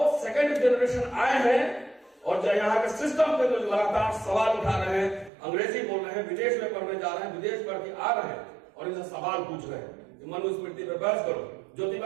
सेकंड जनरेशन आए हैं और जो यहाँ के सिस्टम पे जो लगातार सवाल उठा रहे हैं, अंग्रेजी बोल रहे हैं, विदेश में पढ़ने जा रहे हैं, विदेश पढ़ के आ रहे हैं और इनसे सवाल पूछ रहे हैं। मनुस्मृति पे बहस करो,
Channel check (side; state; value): left; drops out; at 5.3 s